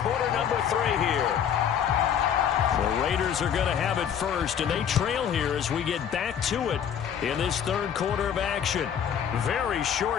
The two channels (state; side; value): quieter; right; 8.6 dB